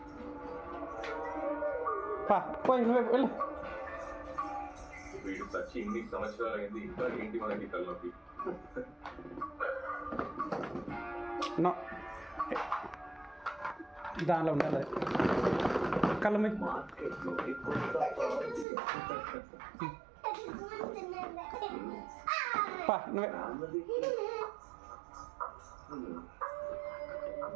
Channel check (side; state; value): left; drops out; at 18.7 s